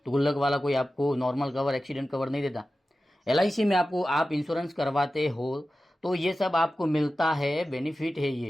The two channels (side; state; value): both; normal; correlation 0.94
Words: तो गुल्लक वाला कोई आपको नॉर्मल कवर, एक्सीडेंट कवर नहीं देता। LIC में आपको, आप इंश्योरेंस करवाते हो तो ये सब आपको मिलता है, बेनिफिट है ये,